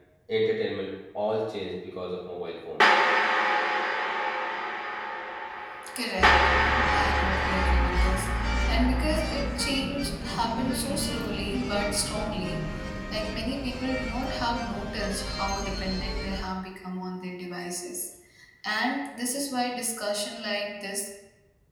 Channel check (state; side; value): identical; both; correlation 1.00